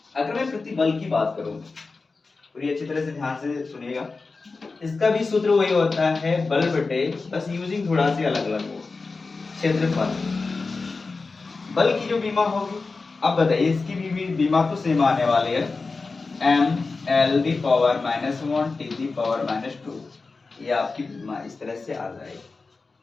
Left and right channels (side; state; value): right; quieter; 4.0 dB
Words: अगर मैं प्रतिबल की बात करूं पूरी अच्छी तरह से ध्यान से सुनिएगा, इसका भी सूत्र वही होता है बल बटे, बस यूजिंग थोड़ा सी अलग अलग हो, क्षेत्रफल। बल की जो बीमा होगी, अब बताइए इसकी भी बीमा तो सेम आने वाली है mL⁻⁻1 t⁻²। ये आपकी बीमा इस तरह से आ जाएगी।